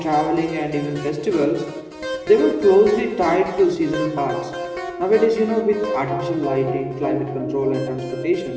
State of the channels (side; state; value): both; identical; correlation 1.00